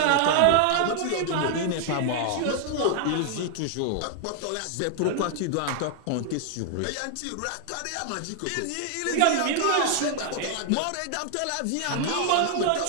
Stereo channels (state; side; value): different; both; correlation 0.00